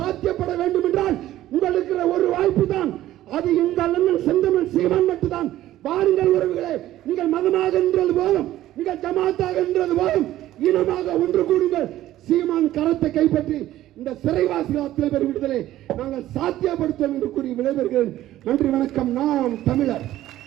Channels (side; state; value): left; quieter; 14.1 dB